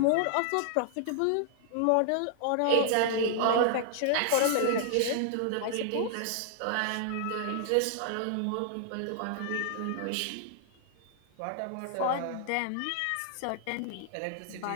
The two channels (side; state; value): both; different; correlation -0.01